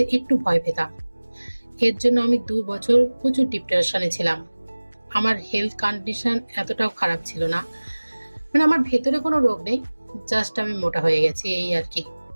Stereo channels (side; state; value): both; inverted; correlation -1.00